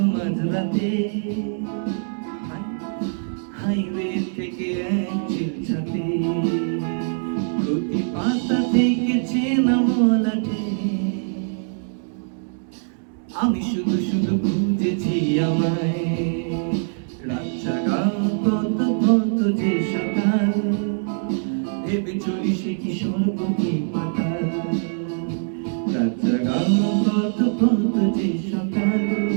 মাঝরাতে হাইওয়ে থেকে এক চিলচাতে, প্রতি পাতা থেকে চেনা মলাটে আমি শুধু শুধু খুঁজেছি আমায়। রাত জাগা কত কত যে সকাল, ভেবে চলি সে কি স্বর্গ কি পাতাল। রাত জাগা কত কত যে সকাল,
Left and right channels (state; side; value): silent; left; 63 dB below the other